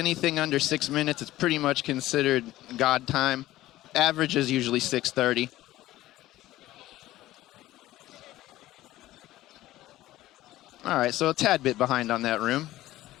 under 6 minutes is pretty much considered god time. Average is usually 6:30. All right, so a tad bit behind on that room.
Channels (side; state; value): right; quieter; 15.7 dB